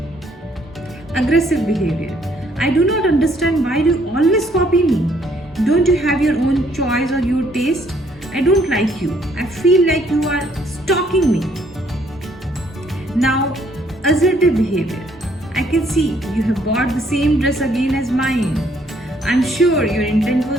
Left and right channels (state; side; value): normal; both; correlation 0.66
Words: Aggressive behavior. I do not understand why you always copy me. Don't you have your own choice or your taste? I don't like you. I feel like you are stalking me. Now, assertive behavior. I can see you have bought the same dress again as mine. I'm sure your intent